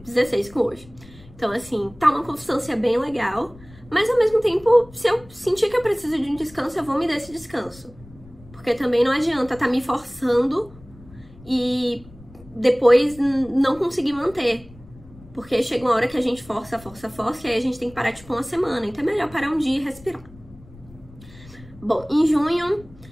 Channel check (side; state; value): left; noise; rumble, 22 dB below the sound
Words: com hoje. Então, assim, tá uma constância bem legal. Mas, ao mesmo tempo, se eu sentir que eu preciso de um descanso, eu vou me dar esse descanso. Porque também não adianta tá me forçando e depois não conseguir manter. Porque chega uma hora que a gente força, e aí a gente tem que parar, tipo, uma semana. Então é melhor parar um dia e respirar. Bom, em junho